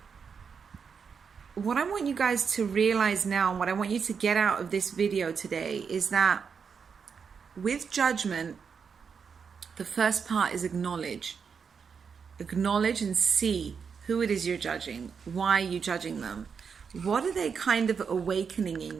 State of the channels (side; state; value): left; quieter; 6.2 dB